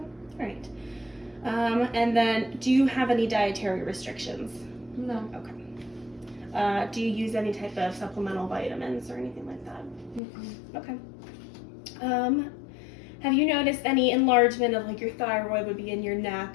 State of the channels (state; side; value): drops out; right; at 10.2 s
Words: All right. And then, do you have any dietary restrictions? No. Okay. Do you use any type of supplemental vitamins or anything like that? Mm-mm. Okay. Have you noticed any enlargement of like your thyroid would be in your neck,